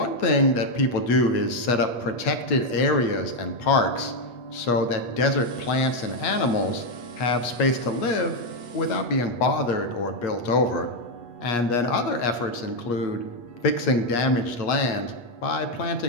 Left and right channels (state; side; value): late; right; 8.4 ms